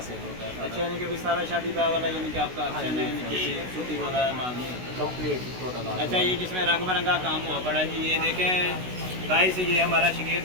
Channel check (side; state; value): left; late; 16 ms